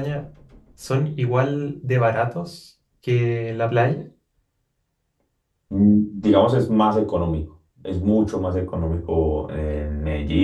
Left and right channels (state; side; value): identical; both; correlation 1.00